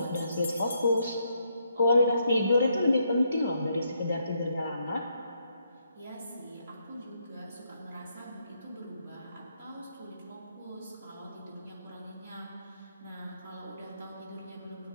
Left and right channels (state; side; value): inverted; both; correlation -0.76